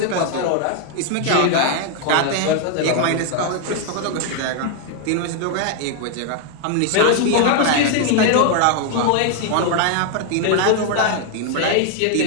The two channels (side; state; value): both; different; correlation 0.00